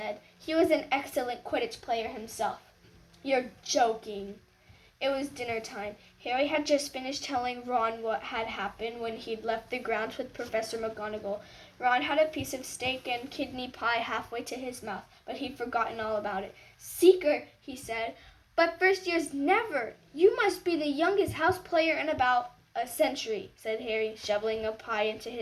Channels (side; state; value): both; identical; correlation 1.00